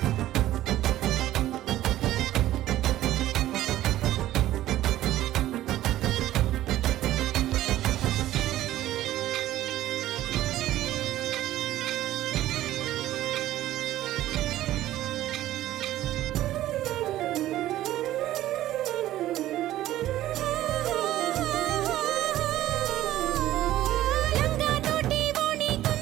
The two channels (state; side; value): quieter; left; 14.2 dB